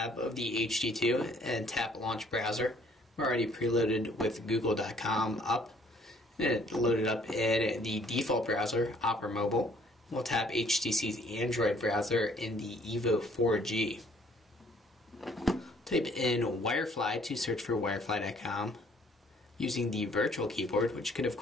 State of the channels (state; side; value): normal; both; correlation 0.60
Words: of the HD2 and tap launch browser. We're already preloaded with google.com up. And it loaded up in the default browser, Opera Mobile. We'll tap HTC's Android browser in the EVO 4G. Type in Wirefly to search for wirefly.com using the virtual keyboard, which could of